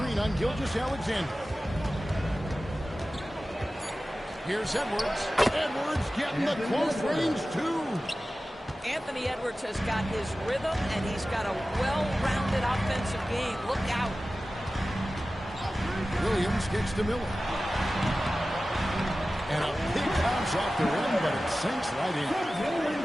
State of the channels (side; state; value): both; normal; correlation 0.95